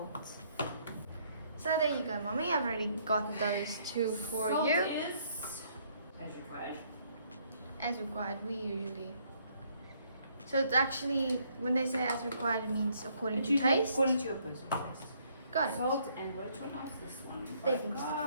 So there you go, mommy. I've already got those 2 for Salt you. is as required. As required, we usually. So it's actually, when they say as required, it means according to taste. According to your personal taste. Got it. Salt and which one else? This one. Baking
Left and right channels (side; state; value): both; inverted; correlation -0.67